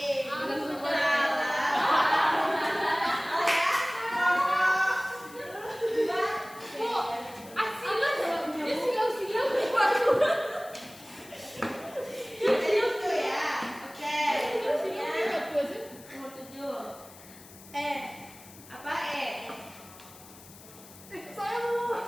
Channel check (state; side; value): noise; left; hiss, 20 dB below the sound